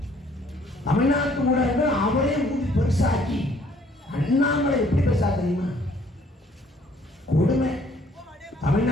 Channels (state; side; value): normal; both; correlation 0.61